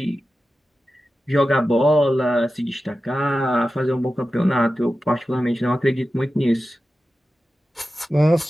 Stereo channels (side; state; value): both; normal; correlation 0.93